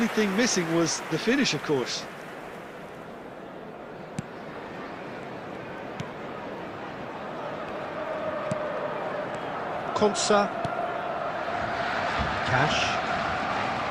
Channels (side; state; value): both; identical; correlation 1.00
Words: thing missing was the finish, of course. Konsa. Cash.